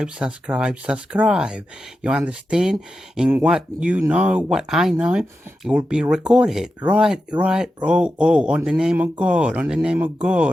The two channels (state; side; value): normal; both; correlation 0.90